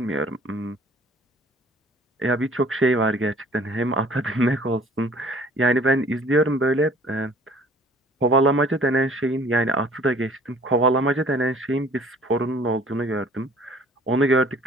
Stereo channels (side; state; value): both; normal; correlation 0.53